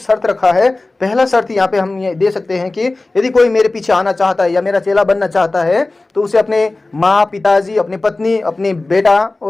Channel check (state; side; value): quieter; right; 3.1 dB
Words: रखा है। पहला शर्त यहाँ पे हम ये दे सकते हैं कि यदि कोई मेरे पीछे आना चाहता है या मेरा चेला बनना चाहता है तो उसे अपने माँ पिताजी, अपनी पत्नी, अपनी बेटा